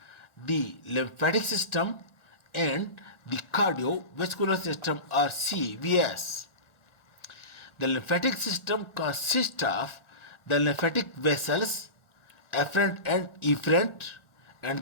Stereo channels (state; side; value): late; right; 1.4 ms